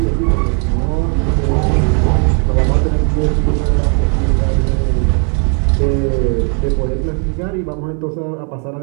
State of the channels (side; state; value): left; quieter; 38.8 dB